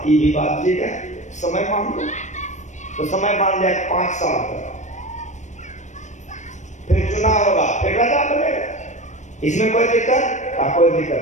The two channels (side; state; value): right; late; 0.35 ms